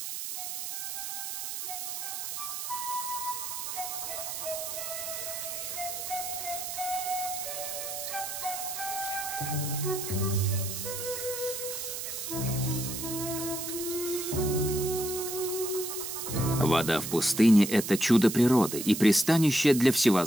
Вода в пустыне – это чудо природы и пристанище для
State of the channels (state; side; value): noise; right; hiss, 5 dB below the sound